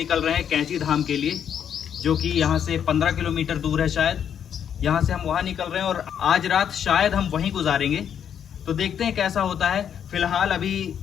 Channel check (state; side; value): quieter; right; 8.6 dB